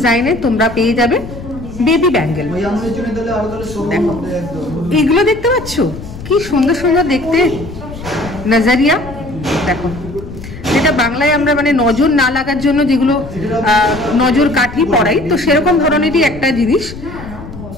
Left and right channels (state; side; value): noise; left; rumble, 13 dB below the sound